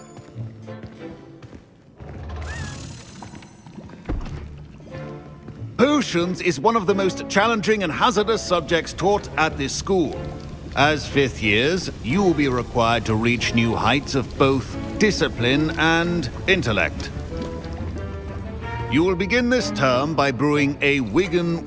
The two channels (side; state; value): both; identical; correlation 1.00